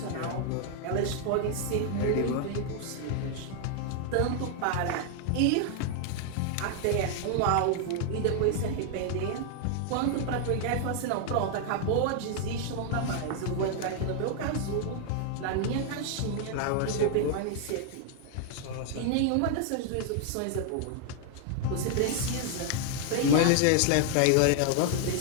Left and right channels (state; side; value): different; both; correlation 0.00